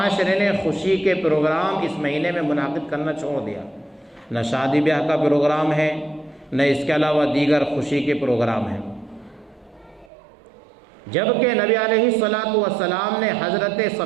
نے خوشی کے پروگرام اس مہینے میں منعقد کرنا چھوڑ دیا۔ نہ شادی بیاہ کا پروگرام ہے، نہ اس کے علاوہ دیگر خوشی کے پروگرام ہیں، جبکہ نبی علیہ الصلاۃ والسلام نے حضرت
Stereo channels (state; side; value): drops out; left; at 10.1 s